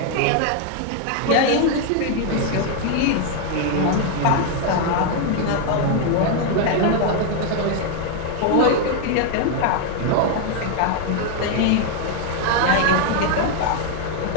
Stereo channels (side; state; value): both; different; correlation 0.00